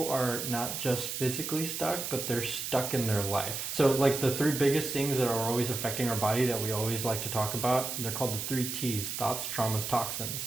are not just physically stuck, but they're stuck in their life. So like the 3 biggest things that are always affecting our body that we always like to talk about, they're called the 3 T's: thoughts, traumas,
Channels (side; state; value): right; noise; hiss, 4 dB below the sound